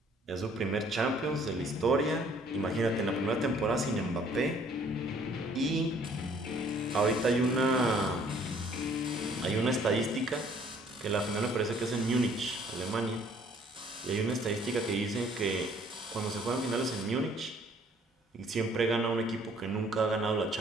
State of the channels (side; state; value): both; normal; correlation 0.59